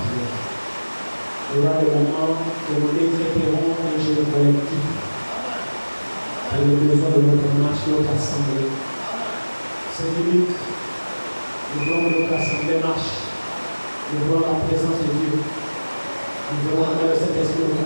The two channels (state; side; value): inverted; both; correlation -1.00